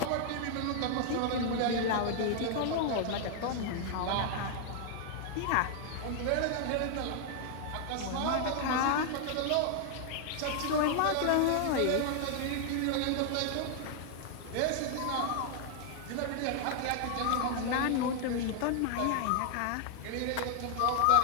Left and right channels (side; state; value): both; different; correlation 0.00